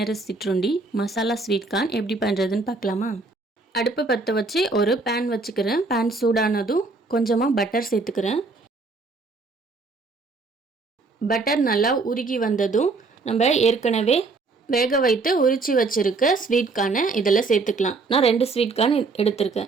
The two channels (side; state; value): left; quieter; 3.8 dB